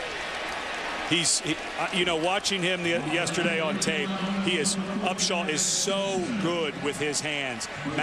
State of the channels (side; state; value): both; identical; correlation 1.00